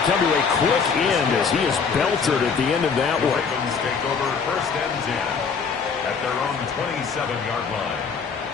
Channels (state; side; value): quieter; right; 5.7 dB